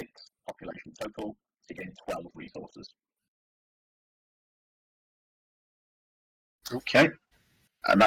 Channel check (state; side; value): identical; both; correlation 1.00